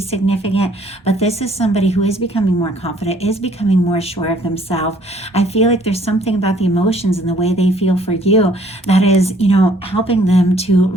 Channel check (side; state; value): both; normal; correlation 0.60